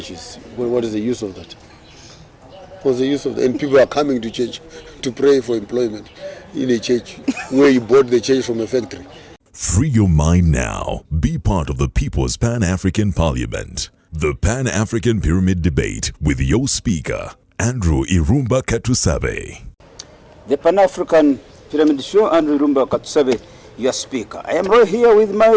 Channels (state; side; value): identical; both; correlation 1.00